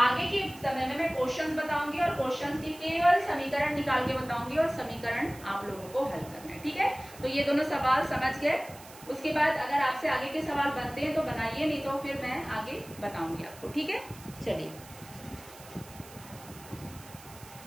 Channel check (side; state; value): right; noise; hiss, 19 dB below the sound